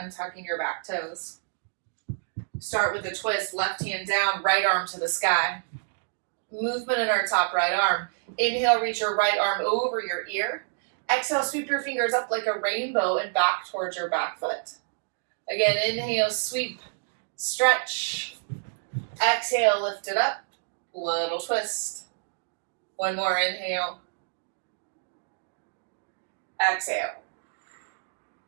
your back toes. Start with a twist, left hand down, right arm to the sky. Movement in our top right arm. Inhale, reach your right arm over your ear. Exhale, sweep your fingers up like a rainbow and back towards your back foot. Again, inhale, sweep, stretch. Exhale, lift it up. Little twist. One more inhale. Exhale.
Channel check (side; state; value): left; silent; digital silence